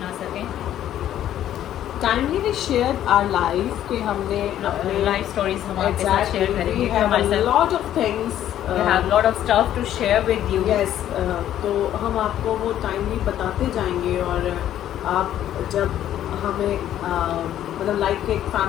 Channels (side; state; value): right; quieter; 11.6 dB